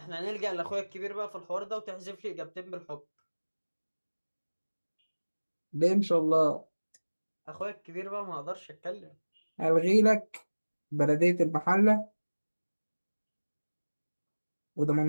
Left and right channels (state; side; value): inverted; both; correlation -1.00